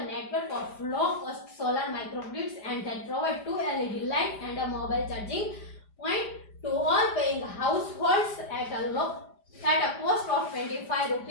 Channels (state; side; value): late; right; 5.0 ms